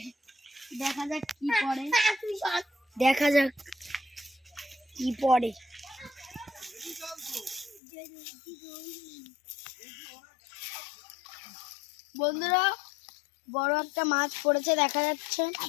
যাক কি পড়ে, দেখা যাক কি পড়ে। বন্ধুরা বড় একটা মাছ পড়েছে, দেখা যাচ্ছে।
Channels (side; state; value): right; drops out; at 7.8 s